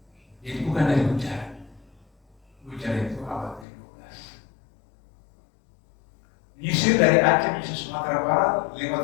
Jadi bukan dari Gujarat. Gujarat itu abad ke-12. Menyisir dari Aceh menyisir Sumatera Barat, lewat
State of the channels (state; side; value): drops out; right; at 3.7 s